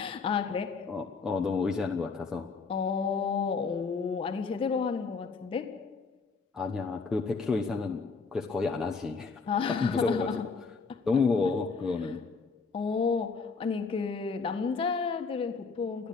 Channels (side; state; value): right; quieter; 4.7 dB